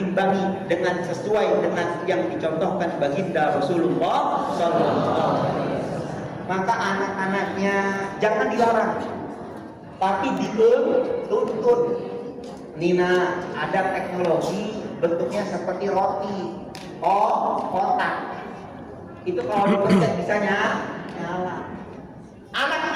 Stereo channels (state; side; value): identical; both; correlation 1.00